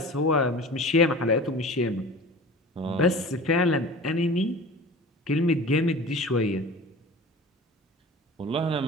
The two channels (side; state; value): both; normal; correlation 0.38